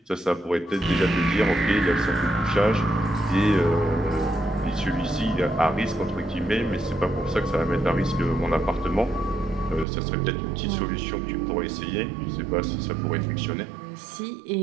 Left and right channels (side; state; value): left; drops out; at 9.9 s